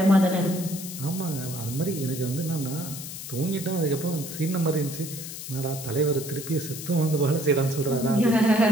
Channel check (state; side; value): noise; left; hiss, 9 dB below the sound